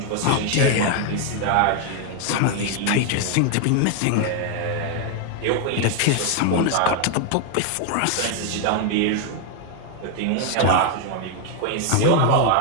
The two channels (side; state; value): both; different; correlation 0.01